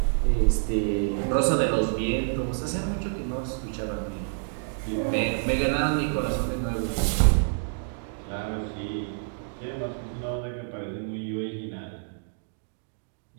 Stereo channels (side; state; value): left; silent; digital silence